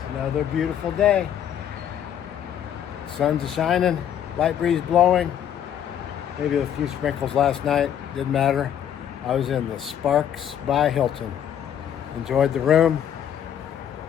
another beautiful day. Sun's shining, light breeze blowing. Maybe a few sprinkles last night, didn't matter. I was in the Sparks by Hilton. Enjoyed the room.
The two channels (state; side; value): quieter; right; 9.7 dB